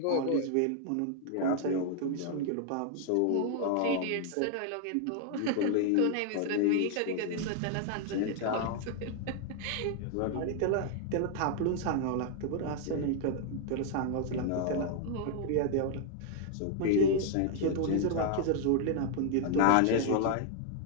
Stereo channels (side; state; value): both; different; correlation 0.00